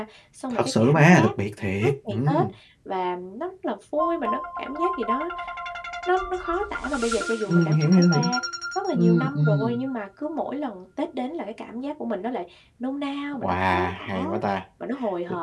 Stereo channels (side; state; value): both; identical; correlation 1.00